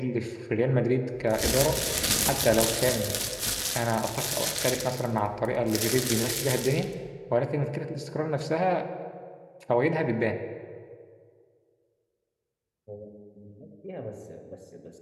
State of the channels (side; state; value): both; identical; correlation 1.00